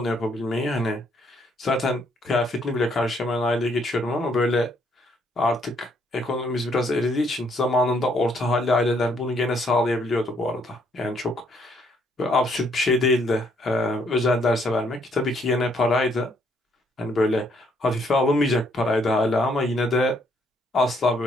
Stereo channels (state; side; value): normal; both; correlation 0.69